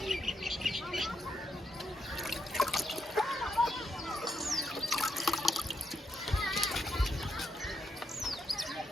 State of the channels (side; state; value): both; normal; correlation 0.81